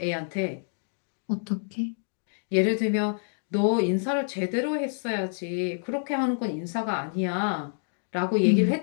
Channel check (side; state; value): right; silent; digital silence